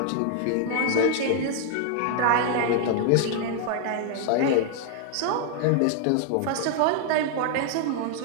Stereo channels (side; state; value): both; different; correlation -0.01